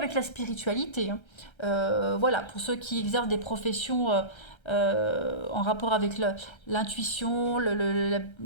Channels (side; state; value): right; late; 1.3 ms